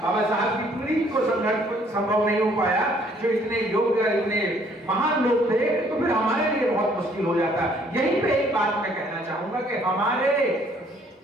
बाबा साहब की पीढ़ी को संभव नहीं हो पाया, जो इतने योग्य, इतने महान लोग थे, तो फिर हमारे लिए बहुत मुश्किल हो जाता। यहीं पे एक बात मैं कहना चाहूंगा कि हमारे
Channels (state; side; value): normal; both; correlation 0.62